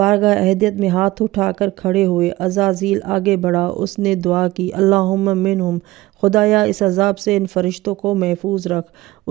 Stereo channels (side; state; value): left; quieter; 18.1 dB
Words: عہدیت میں ہاتھ اٹھا کر کھڑے ہوئے۔ عزازیل آگے بڑھا، اس نے دعا کی، اللہم منہم، خدایا اس عذاب سے ان فرشتوں کو محفوظ رکھ۔